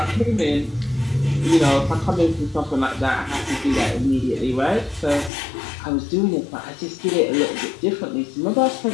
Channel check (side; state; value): right; drops out; at 5.3 s